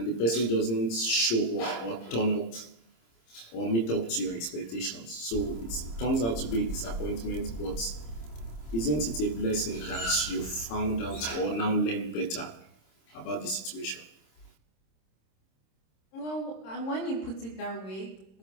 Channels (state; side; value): late; right; 26 ms